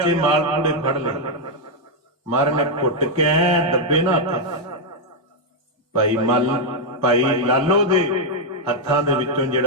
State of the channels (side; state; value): both; normal; correlation -0.01